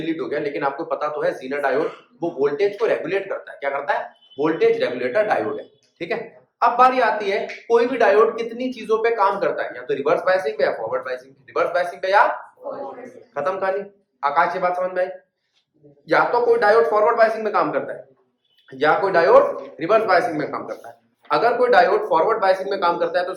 हो गया लेकिन आपको पता तो है, जीना डायोड। वो वोल्टेज को रेगुलेट करता है, क्या करता है, वोल्टेज रेगुलेटर डायोड है, ठीक है। अब बारी आती है कोई भी डायोड कितनी चीजों पे काम करता है, या तो रिवर्स बायसिंग पे या फॉरवर्ड बायसिंग, रिवर्स बायसिंग पे या खत्म कहानी। आकाश ये बात समझ में आई, या तो कोई डायोड फॉरवर्ड बायसिंग में काम करता है या कोई डायोड रिवर्स बायसिंग में काम करता है। अगर कोई डायोड फॉरवर्ड बायसिंग में काम करता है तो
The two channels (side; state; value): both; identical; correlation 1.00